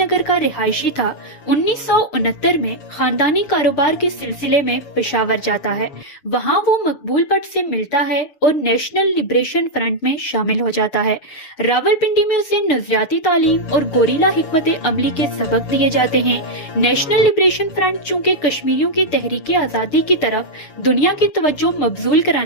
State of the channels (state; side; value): late; right; 7.0 ms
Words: का रिहायशी था, 1969 में खानदानी कारोबार के सिलसिले में पेशावर जाता है। वहाँ वो मकबूल भट्ट से मिलता है और नेशनल लिबरेशन फ्रंट में शामिल हो जाता है। रावलपिंडी में उसे नजरियाती तालीम और गोरिल्ला हिकमत अमली के सबक दिए जाते हैं। नेशनल लिबरेशन फ्रंट चूँकि कश्मीरियों की तहरीक आज़ादी की तरफ दुनिया की तवज्जो मबजूल